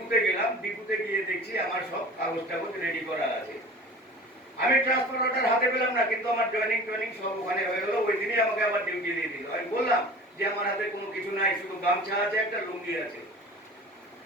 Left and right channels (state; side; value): normal; both; correlation 0.39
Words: গেলাম। ডিপুতে গিয়ে দেখছি আমার সব কাগজ টাগজ রেডি করা আছে। আমি ট্রান্সফার অর্ডার হাতে পেলাম না, কিন্তু আমার জয়েনিং সব ওখানে হয়ে গেল। ওই দিনই আমাকে আবার ডিউটি দিয়ে দিল। আমি বললাম যে আমার হাতে কোনো কিছু নাই, শুধু গামছা আছে, একটা লুঙ্গি আছে।